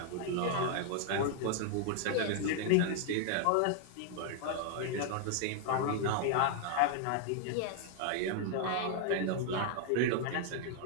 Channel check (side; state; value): both; different; correlation 0.00